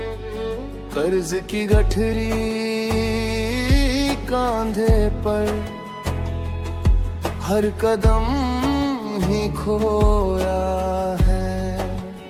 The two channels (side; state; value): both; identical; correlation 1.00